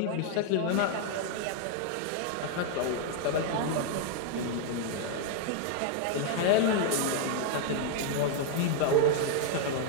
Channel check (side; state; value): both; different; correlation 0.00